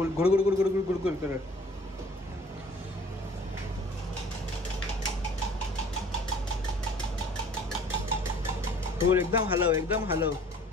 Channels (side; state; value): both; normal; correlation 0.52